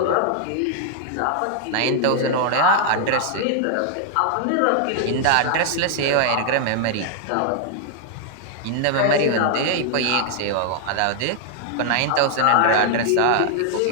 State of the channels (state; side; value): different; both; correlation 0.00